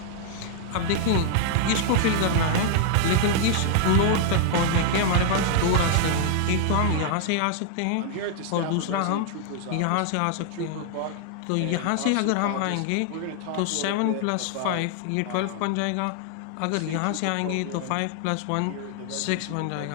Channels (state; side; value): different; both; correlation 0.00